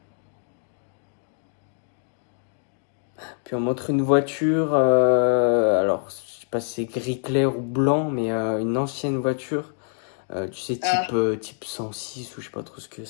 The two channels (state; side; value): silent; right; 60 dB below the other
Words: Puis on montre une voiture, alors je sais pas si c'est gris clair ou blanc, mais une ancienne voiture, tu sais, type 106 ou je sais pas trop ce que